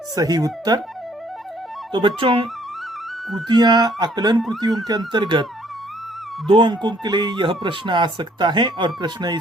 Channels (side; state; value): both; normal; correlation 0.63